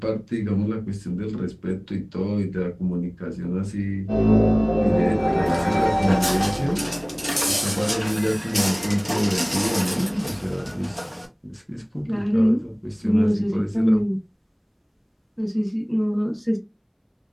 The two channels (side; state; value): both; identical; correlation 1.00